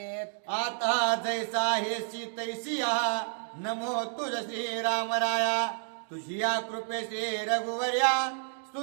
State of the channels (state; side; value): silent; left; digital silence